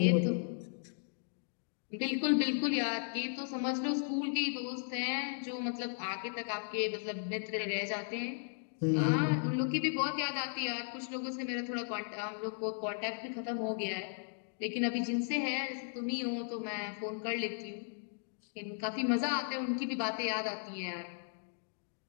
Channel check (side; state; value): right; silent; digital silence